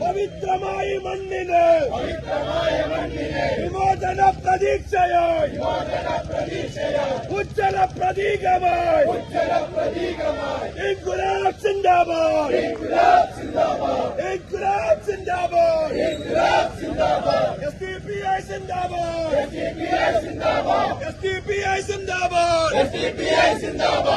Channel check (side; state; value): both; identical; correlation 1.00